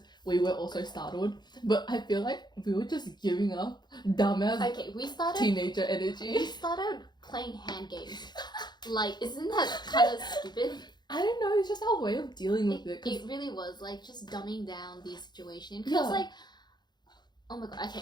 We were also startled, but I feel like we were just giving up dumbass Okay, we started. teenager We energy. started playing hand games. Like, isn't that kind of stupid? I don't know, it's just our way of dealing with it. 'cause- It really was like just dumbing down the situation. Yeah. Because like, oh my god,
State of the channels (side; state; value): right; late; 0.21 ms